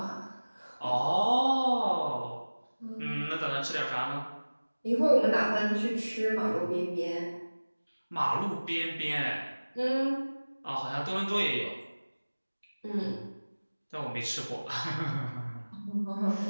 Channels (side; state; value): both; inverted; correlation -1.00